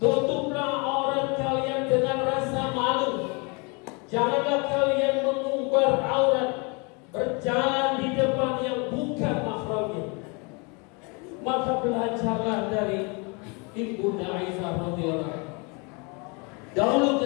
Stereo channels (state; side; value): quieter; right; 31.2 dB